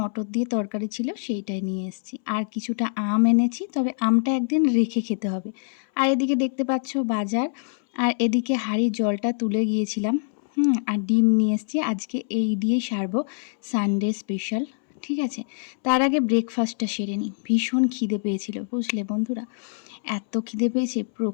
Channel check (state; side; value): silent; right; 62 dB below the other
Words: দিয়ে তরকারি ছিল, সেইটাই নিয়ে এসেছি। আর কিছুটা আম এনেছি, তবে আমটা একদিন রেখে খেতে হবে। আর এদিকে দেখতে পাচ্ছ বাজার, আর এদিকে হাঁড়ির জলটা তুলে গিয়েছিলাম। আর ডিম নিয়ে এসেছি, আজকে এই দিয়েই সারবো, সানডে স্পেশাল, ঠিক আছে। তার আগে ব্রেকফাস্টটা সেরে নিই, ভীষণ খিদে পেয়েছিল, বুঝলে বন্ধুরা। এত খিদে পেয়েছে,